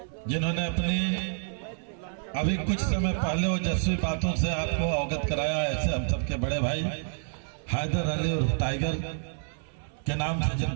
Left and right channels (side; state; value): left; silent; 59 dB below the other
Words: जिन्होंने अपनी अभी कुछ समय पहले ओजस्वी बातों से आपको अवगत कराया, ऐसे हम सबके बड़े भाई हैदर अली और टाइगर के नाम से